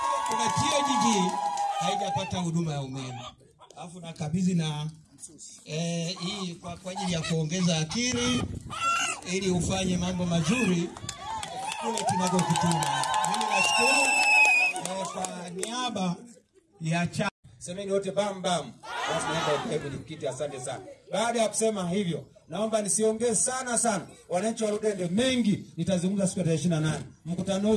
kuna TOGG haijapata huduma ya umeme. Alafu nakabidhi na hii kwa ajili ya kuongeza akili ili ufanye mambo mazuri kule tunakokutuma. Mimi nashukuru kwa niaba ya semeni wote bam bam. Basi naomba ukae kwenye kiti, asante sana. Baada ya kusema hivyo, naomba nisiongee sana. Wananchi wa Ludende mengi nitazungumza siku ya 28. Mkutano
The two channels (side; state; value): both; identical; correlation 1.00